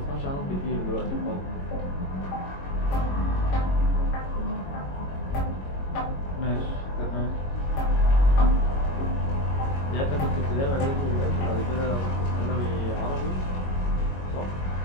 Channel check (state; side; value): late; right; 22 ms